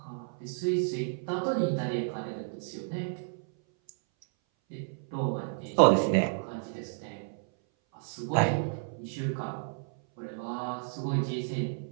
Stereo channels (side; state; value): left; silent; 57 dB below the other